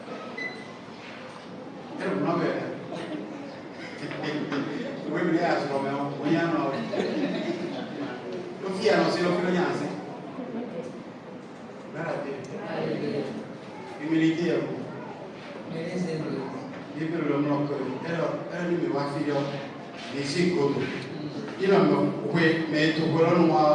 Oui, mais il y a ce moment, il y a un autre. Le fils a annoncé le fils. Humilité à vous. Il peut le nom que elle me va faire des sécours. Il a me mais tout le monde a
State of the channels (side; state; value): both; identical; correlation 1.00